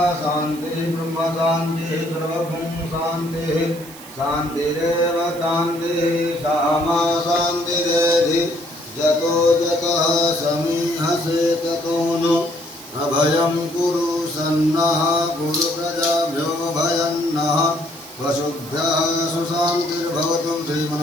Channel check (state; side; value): noise; right; hiss, 18 dB below the sound